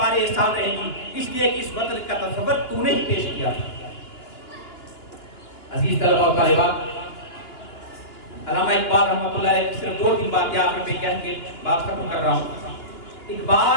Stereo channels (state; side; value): late; right; 2.9 ms